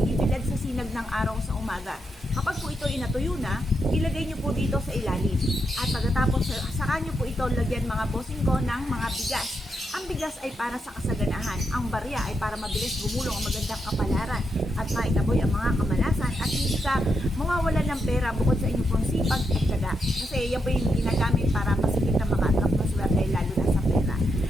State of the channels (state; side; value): normal; both; correlation 0.83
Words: sa sinag ng araw sa umaga. Kapag po ito inatuyo na, ilagay nyo po dito sa ilalim. At pagkatapos, saka nyo po ito lagyan mga bossing ko ng mga bigas. Ang bigas ay para sa kasaganahan. Ang barya ay para mabilis gumulong ang magandang kapalaran at maitaboy ang mga kamalasan at hindi ka mawawalan ng pera bukod sa inyong pong sipag at tiyaga. Kasi yan po yung ginagamit para masigit na maka-attract ng swerte lalo na sa pera.